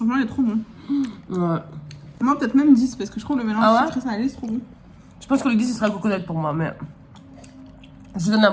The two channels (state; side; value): identical; both; correlation 1.00